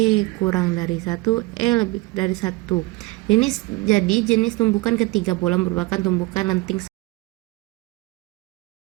kurang dari 1, E lebih dari 1. Jadi jenis tumbukan ketiga bola merupakan tumbukan lenting.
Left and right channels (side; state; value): left; quieter; 21.9 dB